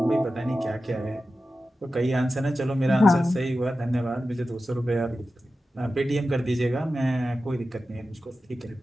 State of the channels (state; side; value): normal; both; correlation 0.93